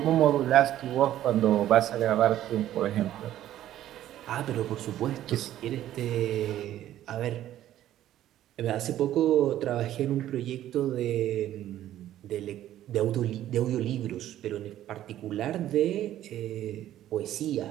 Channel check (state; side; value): quieter; left; 12.7 dB